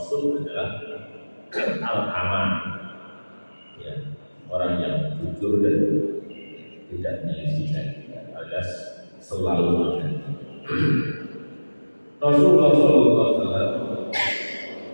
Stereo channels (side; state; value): both; inverted; correlation -1.00